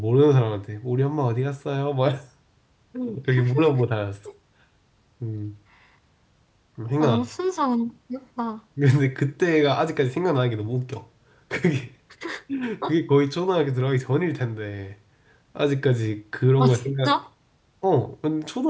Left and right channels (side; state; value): both; identical; correlation 1.00